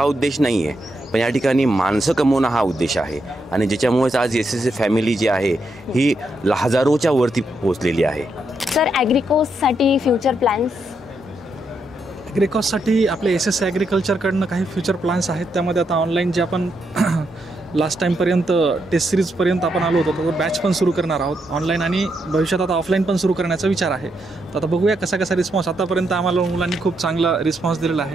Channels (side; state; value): both; normal; correlation 0.80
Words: उद्देश नाही आहे, पण या ठिकाणी माणसं कमवणं हा उद्देश आहे. आणि ज्याच्यामुळेच आज SSC फॅमिली जी आहे ही हजारोच्या वरती पोहोचलेली आहे. सर ॲग्रिकोसाठी फ्युचर प्लॅन्स? ॲग्रिकॉससाठी आपले SSC ॲग्रिकल्चरकडनं काही फ्युचर प्लॅन्स आहेत. त्यामध्ये आता ऑनलाईन जे आपण लास्ट टाईमपर्यंत टेस्ट सिरीजपर्यंत आपण आलो होतो, तर बॅच पण सुरू करणार आहोत ऑनलाईन, आणि भविष्यात आता ऑफलाईन पण सुरू करण्याचा विचार आहे. तर आता बघूया कसा रिस्पॉन्स. आतापर्यंत आम्हाला मुलांनी खूप चांगला रिस्पॉन्स दिलेला